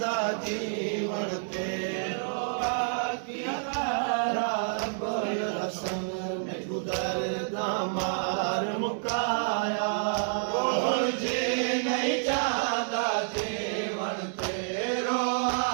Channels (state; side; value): silent; left; 58 dB below the other